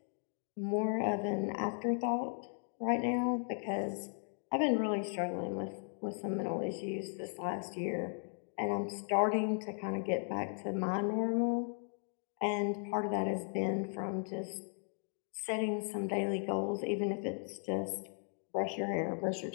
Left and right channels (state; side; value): silent; right; 53 dB below the other